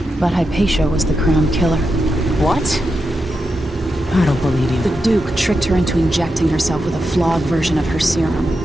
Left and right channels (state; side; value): normal; both; correlation 0.87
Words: But Hypatia was the crown killer. What? I don't believe you. The Duke tricked her into injecting herself with a flawed version of her